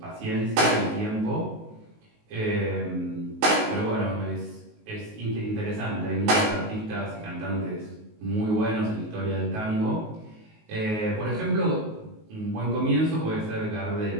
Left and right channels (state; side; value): late; left; 19 ms